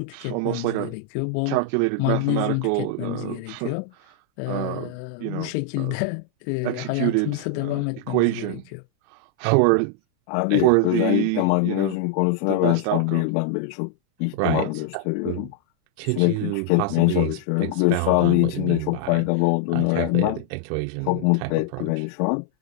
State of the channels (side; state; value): both; different; correlation 0.00